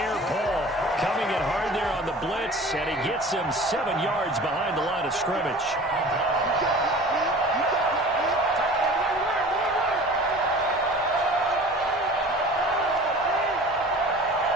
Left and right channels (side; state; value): both; normal; correlation 0.42